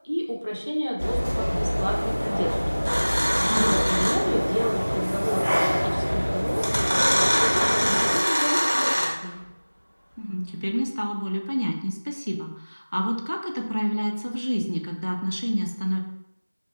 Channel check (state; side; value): inverted; both; correlation -1.00